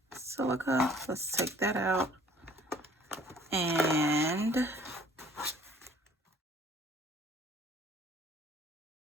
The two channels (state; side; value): normal; both; correlation 0.55